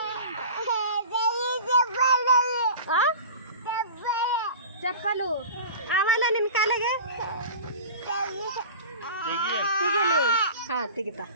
ಚಪ್ಪಲು ಅವಲ್ಲ ನಿನ್ನ ಕಾಲಿಗೆ ತೆಗಿಲಿ ಹಾಂ ತೆಗಿತಾ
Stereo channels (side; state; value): both; inverted; correlation -0.37